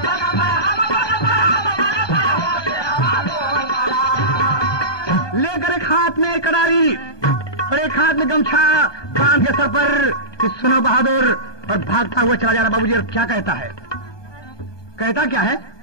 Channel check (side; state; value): right; late; 1.2 ms